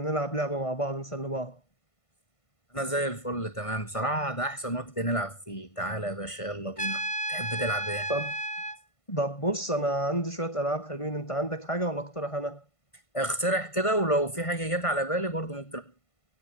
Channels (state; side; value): late; right; 1.5 ms